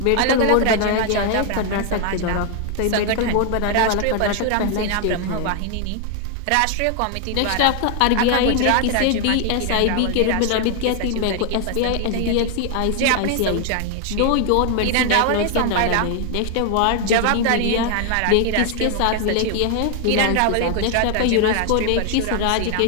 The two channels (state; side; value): different; both; correlation 0.00